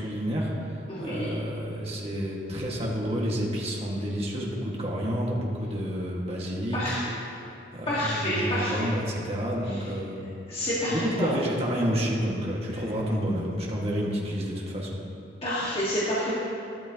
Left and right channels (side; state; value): both; normal; correlation 0.62